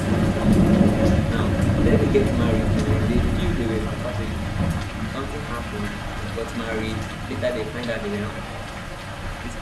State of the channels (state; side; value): identical; both; correlation 1.00